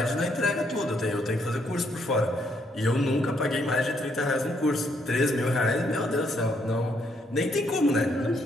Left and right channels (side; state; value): both; normal; correlation 0.72